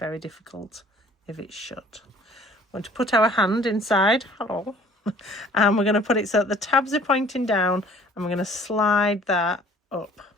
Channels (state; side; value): normal; both; correlation 0.53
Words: difficult if it's shut. We're going to put our hand inside. Hello. And we're going to put it so that the tabs are pointing down, and we're going to slide that up.